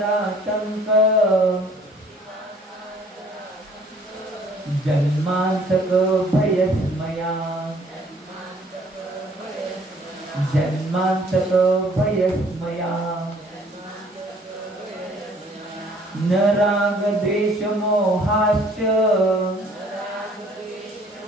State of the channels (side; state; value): both; normal; correlation 0.58